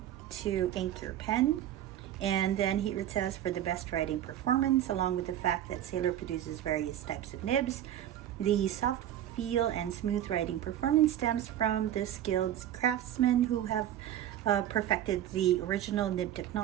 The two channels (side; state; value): left; quieter; 11.6 dB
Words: to ink your pen. And then here it says, for the best writing performance, along with the fact that Sailor produces various types of nibs, the soft feel and smooth writing performance stems from the skilled craftsmen who have perfected the original nib